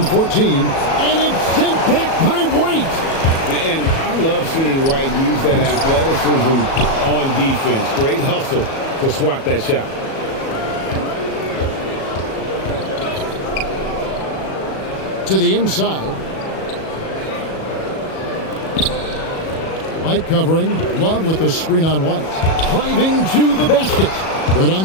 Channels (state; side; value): late; right; 37 ms